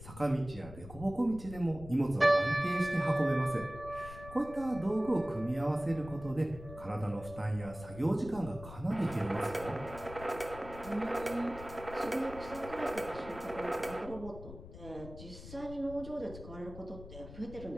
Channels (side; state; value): left; noise; rumble, 14 dB below the sound